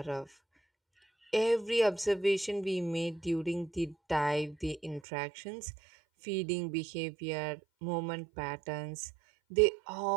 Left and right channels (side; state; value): left; drops out; at 5.0 s